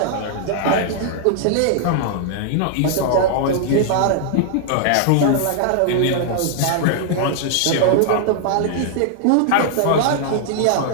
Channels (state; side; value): different; both; correlation -0.01